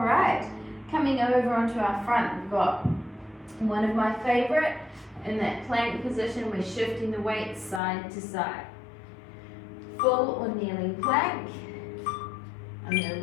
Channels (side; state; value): right; drops out; at 7.8 s